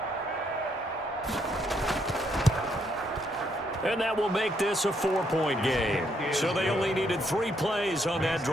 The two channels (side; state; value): both; normal; correlation 0.74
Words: And that will make this a 4-point game. So they only needed 3 plays on that